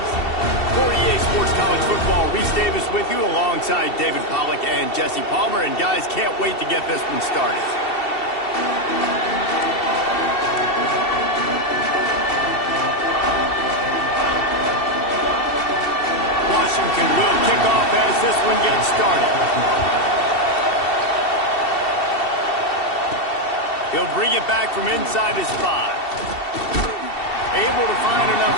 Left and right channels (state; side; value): late; right; 2.7 ms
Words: For EA Sports College Football, Reese Davis with you alongside David Pollack and Jesse Palmer. And guys, can't wait to get this one started. Washington will kick off as this one gets started. He'll bring it back from inside his 5. Able to find